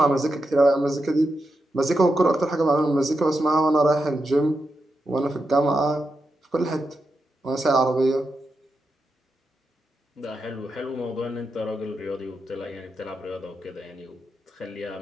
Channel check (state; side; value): normal; both; correlation 0.86